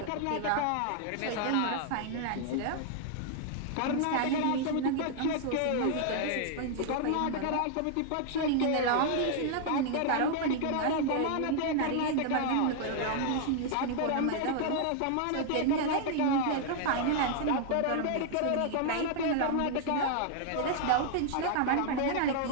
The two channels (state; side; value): different; both; correlation 0.00